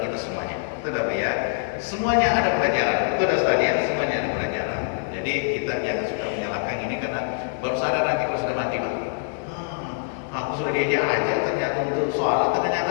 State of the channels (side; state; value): right; silent; digital silence